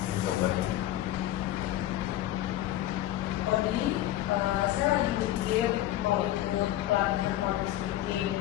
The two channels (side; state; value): right; quieter; 13.9 dB